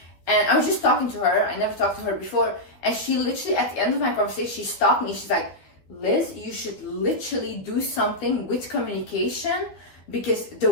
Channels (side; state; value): right; late; 12 ms